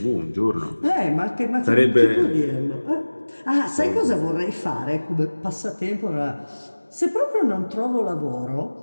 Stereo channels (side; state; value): both; inverted; correlation -1.00